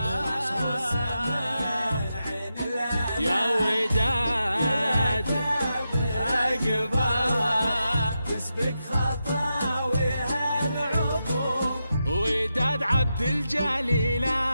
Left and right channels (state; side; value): inverted; both; correlation -0.87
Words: يا وداد أقبلها تسبق خطاويها العطور، وداد عبد الجليل